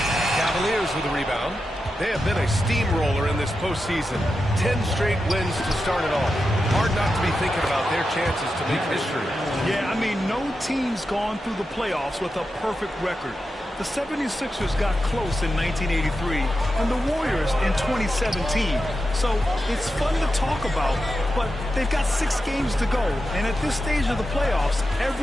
Cavaliers with a rebound. They have been a steamroller in this postseason. 10 straight wins to start it off. Hard not to be thinking about their chances to make history. Yeah, I mean, no team's gone through the playoffs with a perfect record. The 76ers got close in 1983 and the Warriors in 2017. So it's fun to talk about, but they've got 6 games to go. And at this stage of the playoffs,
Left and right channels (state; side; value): normal; both; correlation 0.89